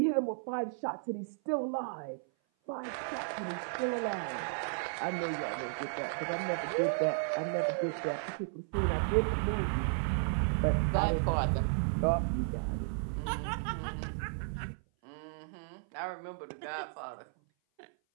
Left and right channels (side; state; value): left; silent; 55 dB below the other